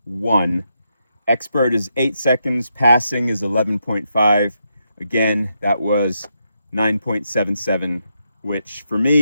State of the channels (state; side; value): inverted; both; correlation -0.82